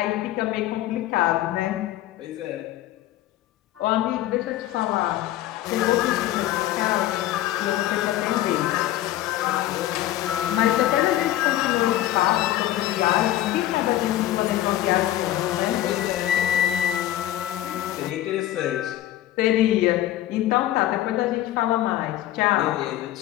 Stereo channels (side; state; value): right; quieter; 14.0 dB